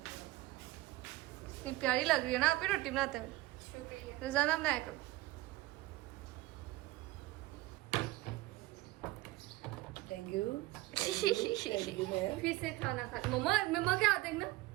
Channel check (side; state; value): left; quieter; 18.4 dB